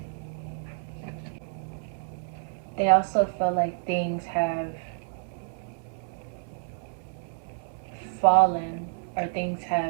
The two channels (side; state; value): left; silent; 59 dB below the other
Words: They also feel like things have fallen or things